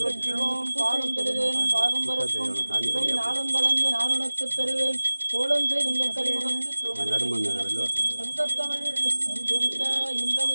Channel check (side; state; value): both; inverted; correlation -1.00